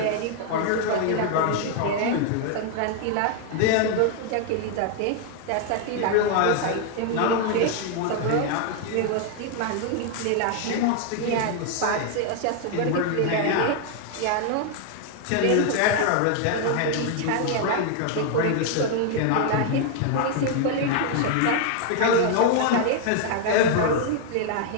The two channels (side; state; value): both; different; correlation 0.00